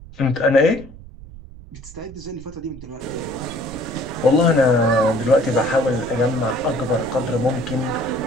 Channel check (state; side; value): noise; right; rumble, 17 dB below the sound